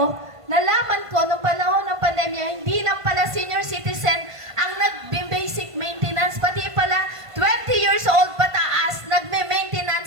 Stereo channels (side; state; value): left; late; 1.5 ms